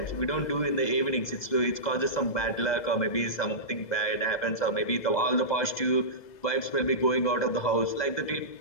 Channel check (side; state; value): right; late; 2.0 ms